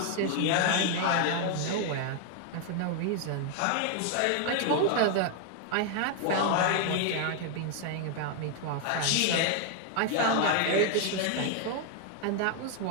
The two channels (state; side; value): different; both; correlation 0.00